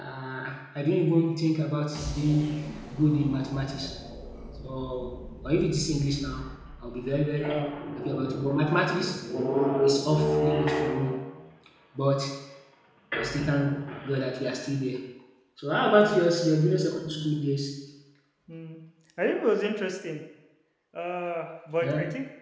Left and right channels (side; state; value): both; identical; correlation 1.00